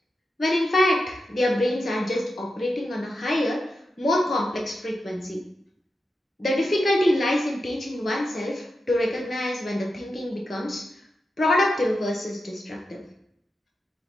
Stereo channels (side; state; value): both; normal; correlation 0.89